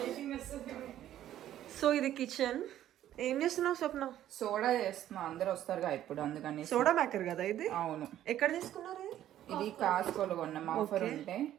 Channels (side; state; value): left; quieter; 12.1 dB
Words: సో ఇది కిచెన్. ఏం చేస్తున్నావు స్వప్న? సోడా చేస్తున్నా, అందరు వస్తారుగా ఇప్పుడు, అందుకని. సోడా మేకర్ కదా ఇది? అవును. ఎక్కడ తీసుకున్నారు? ఇది కాస్కోలో కొన్నాం, ఆఫర్ ఉంటే.